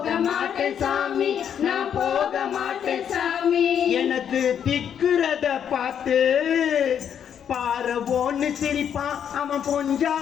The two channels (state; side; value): quieter; right; 8.6 dB